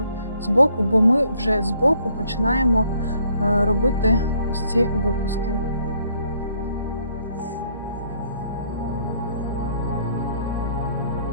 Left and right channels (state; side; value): inverted; both; correlation -0.66